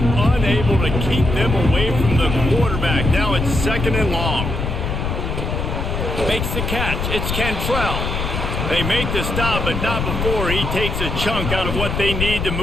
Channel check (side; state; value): left; noise; rumble, 2 dB below the sound